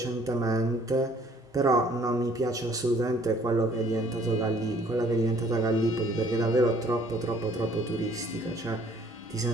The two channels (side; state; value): both; normal; correlation 0.58